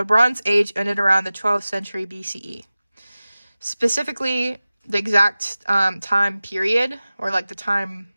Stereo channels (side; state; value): both; inverted; correlation -0.97